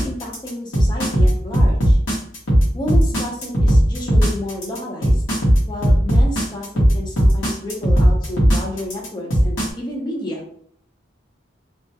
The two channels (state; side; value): normal; both; correlation 0.93